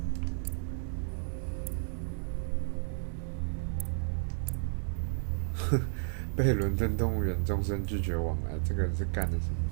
被伦敦动物园终身拒绝往来，这个人是干的什么？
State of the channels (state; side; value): silent; left; 56 dB below the other